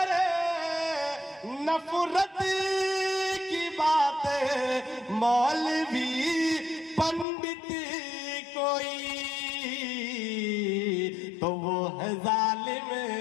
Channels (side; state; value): right; drops out; at 7.2 s